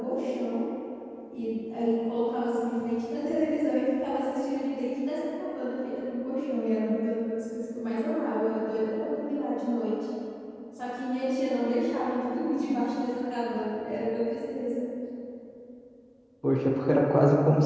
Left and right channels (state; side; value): identical; both; correlation 1.00